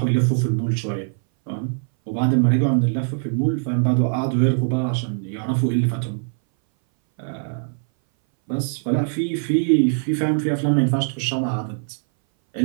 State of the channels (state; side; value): silent; left; 61 dB below the other